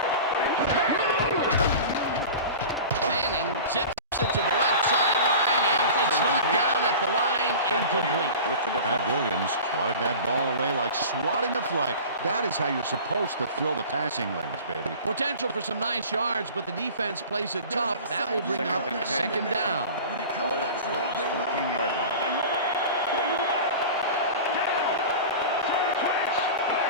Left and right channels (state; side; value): inverted; both; correlation -0.36